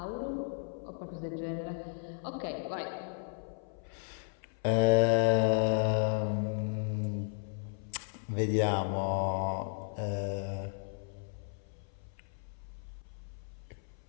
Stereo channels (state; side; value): silent; right; 55 dB below the other